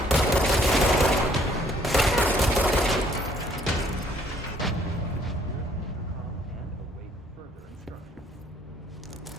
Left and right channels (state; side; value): normal; both; correlation 0.64